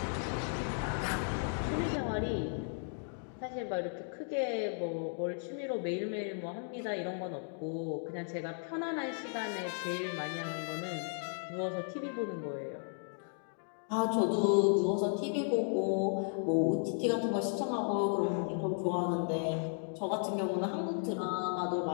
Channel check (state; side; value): silent; right; 54 dB below the other